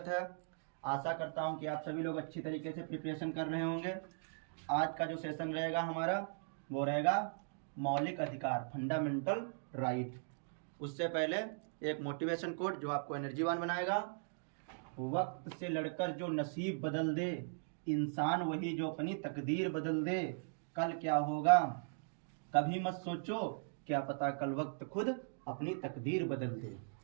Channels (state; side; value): silent; left; digital silence